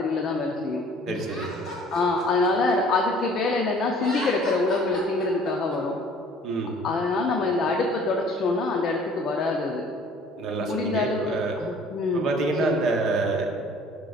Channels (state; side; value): normal; both; correlation 0.53